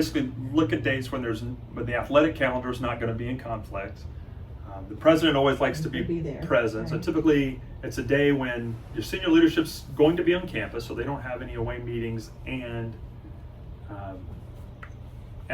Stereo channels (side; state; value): both; identical; correlation 1.00